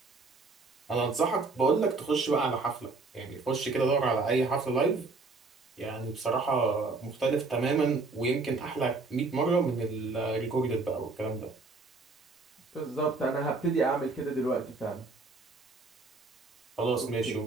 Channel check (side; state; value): left; quieter; 3.8 dB